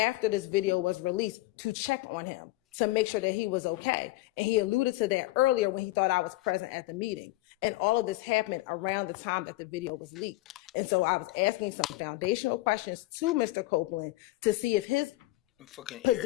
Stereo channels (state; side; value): quieter; right; 19.1 dB